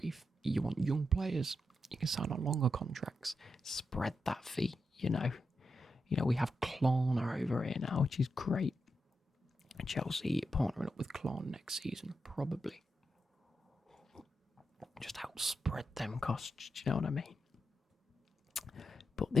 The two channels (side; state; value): both; normal; correlation 0.86